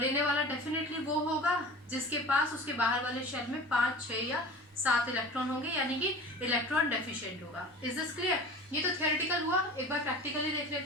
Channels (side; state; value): both; normal; correlation 0.37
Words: वाला डेफिनेटली वो होगा जिसके पास उसके बाहर वाले शेल में 5, 6 या 7 इलेक्ट्रॉन होंगे, यानी कि इलेक्ट्रॉन डेफिशिएंट होगा। Is this clear? ये तो थियोरेटिकल हुआ, एक बार प्रैक्टिकली देख